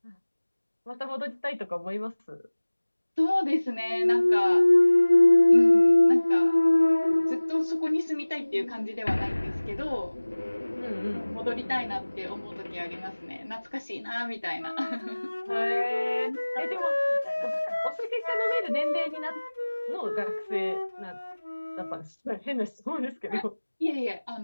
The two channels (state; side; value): inverted; both; correlation -1.00